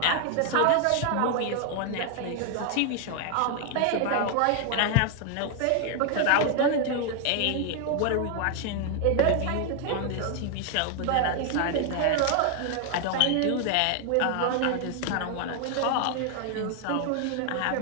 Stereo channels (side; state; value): both; different; correlation 0.00